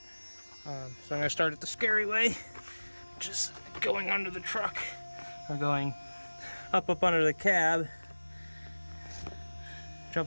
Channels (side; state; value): both; inverted; correlation -1.00